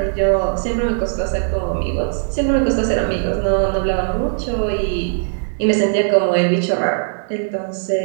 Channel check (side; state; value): left; silent; digital silence